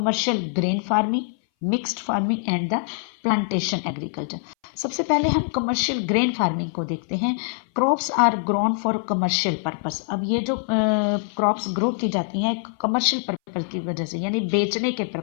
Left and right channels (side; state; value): right; silent; 60 dB below the other